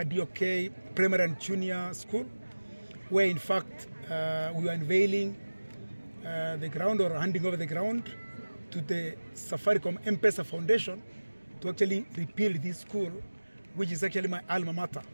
DOK Primary and Junior School, where in fact we were unveiling the ground, or handing over the ground to the Safaricom M-PESA Foundation to actually rebuild this school, which is actually my alma mater,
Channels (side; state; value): both; inverted; correlation -1.00